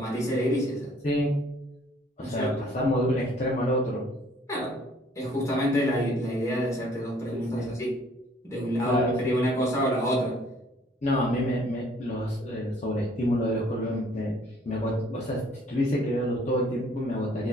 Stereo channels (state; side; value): normal; both; correlation 0.59